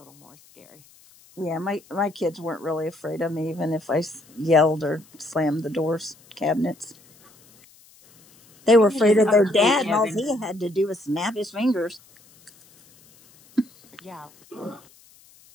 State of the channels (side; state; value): left; noise; hiss, 28 dB below the sound